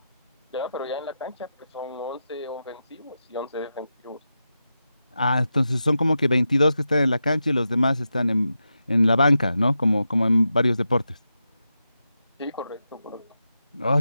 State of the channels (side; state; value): both; inverted; correlation -0.89